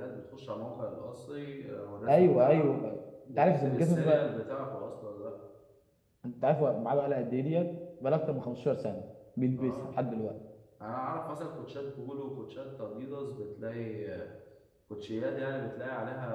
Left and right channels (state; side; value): identical; both; correlation 1.00